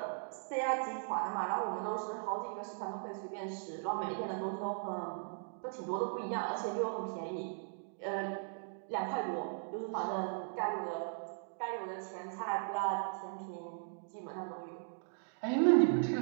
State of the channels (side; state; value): left; silent; digital silence